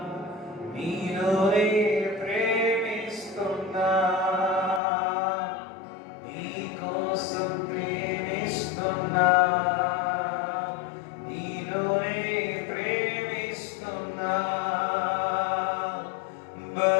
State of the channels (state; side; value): drops out; right; at 4.8 s